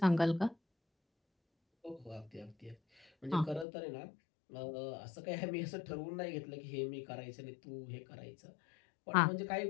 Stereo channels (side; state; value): right; drops out; at 3.7 s